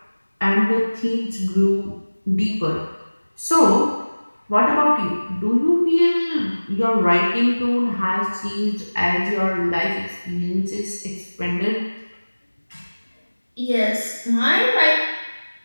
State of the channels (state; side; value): inverted; both; correlation -1.00